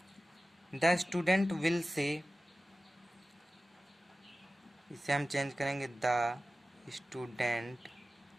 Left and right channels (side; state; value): both; normal; correlation 0.95